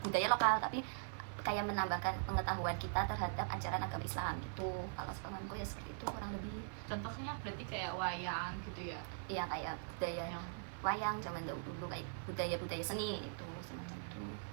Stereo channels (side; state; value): left; silent; 50 dB below the other